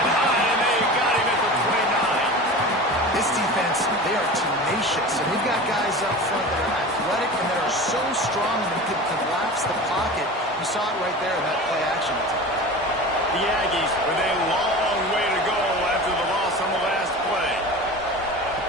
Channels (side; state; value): both; normal; correlation 0.33